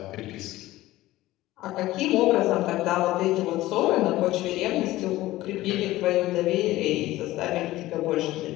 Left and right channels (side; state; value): right; quieter; 16.8 dB